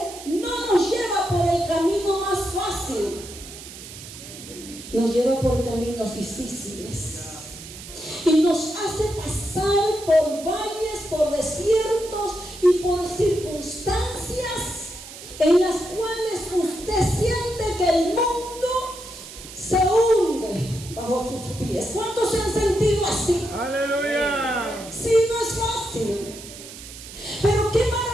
no nos lleva por el camino más fácil. Nos lleva por caminos difíciles. Y nos hace pasar por valles, por desiertos y por circunstancias en las cuales usted siente que el mundo se hunde bajo sus pies. ¿Cuántos se han sentido así? Aleluya. Sí, no es fácil. Pero qué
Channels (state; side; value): noise; right; hiss, 14 dB below the sound